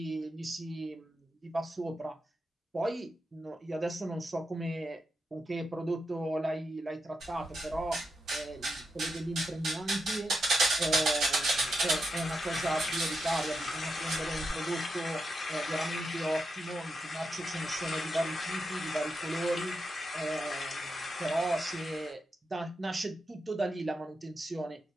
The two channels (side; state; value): both; normal; correlation 0.85